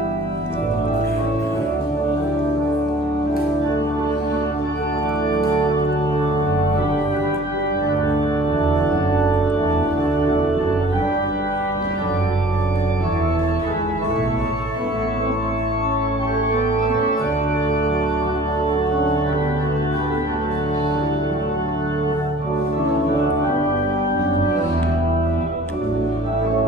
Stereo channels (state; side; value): normal; both; correlation 0.50